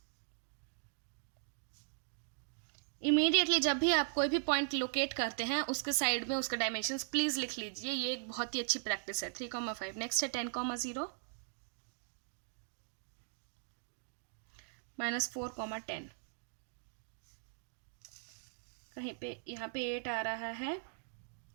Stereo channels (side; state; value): left; silent; digital silence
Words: इमीडिएटली जब भी आप कोई भी पॉइंट लोकेट करते हैं उसके साइड में उसके डायमेंशंस प्लीज लिख लीजिए। ये एक बहुत ही अच्छी प्रैक्टिस है। 3,5। नेक्स्ट है 10,0 -4,10। कहीं पे यहाँ पे 8 आ रहा है